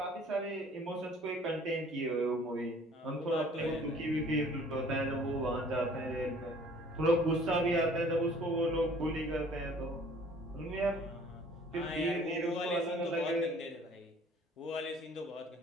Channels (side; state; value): both; normal; correlation 0.53